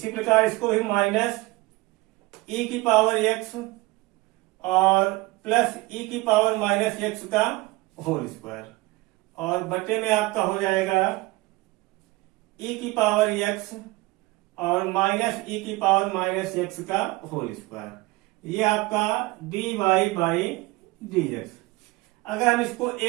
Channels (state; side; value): quieter; left; 21.2 dB